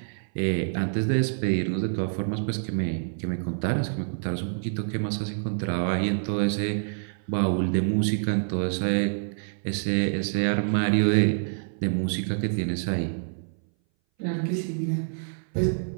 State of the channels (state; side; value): silent; left; 59 dB below the other